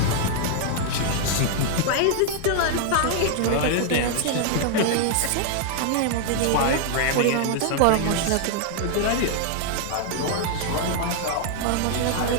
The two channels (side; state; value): both; different; correlation 0.00